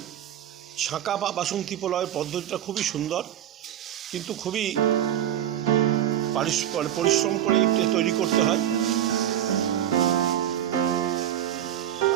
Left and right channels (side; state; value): left; quieter; 11.0 dB